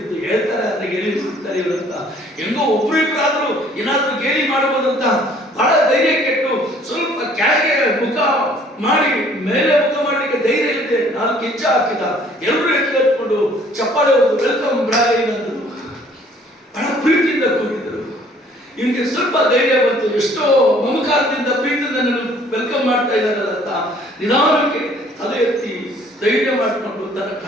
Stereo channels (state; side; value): normal; both; correlation 0.58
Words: ಹೇಳ್ತಾರೆ ಅಂದ್ರೆ ಗೇಲಿ ಮಾಡ್ತಾರೆ ಇವರಂತ. ಹೆಂಗೋ ಒಬ್ರು ಇಬ್ಬರಾದ್ರೂ ಏನಾದ್ರೂ ಗೇಲಿ ಮಾಡಬಹುದಂತ ಬಹಳ ಧೈರ್ಯ ಕೆಟ್ಟು ಸ್ವಲ್ಪ ಕೆಳಗೆ ಮುಖ ಮಾಡಿ ಮೇಲೆ ಮುಖ ಮಾಡಲಿಕ್ಕೆ ಧೈರ್ಯ ಇಲ್ಲದೆ 4 ಹೆಜ್ಜೆ ಹಾಕಿದ. ಎಲ್ಲರೂ ಎತ್ಕೊಂಡು ಚಪ್ಪಾಳೆ ಹೊಡೆದು ವೆಲ್ಕಮ್ ಬ್ರಾಯ್ ಅಂದರು. ಬಹಳ ಪ್ರೀತಿಯಿಂದ ಕೂಗಿದರು. ಇವನಿಗೆ ಸ್ವಲ್ಪ ಧೈರ್ಯ ಬಂತು. ಎಷ್ಟೋ ಮಮಕಾರದಿಂದ ಪ್ರೀತಿಯಿಂದ ನನ್ನ ವೆಲ್ಕಮ್ ಮಾಡ್ತಾ ಇದ್ದಾರಲ್ಲ ಅಂತ ನಿಧಾನಕ್ಕೆ ತಲೆ ಎತ್ತಿ ಧೈರ್ಯ ಮಾಡಿಕೊಂಡು ತನ್ನ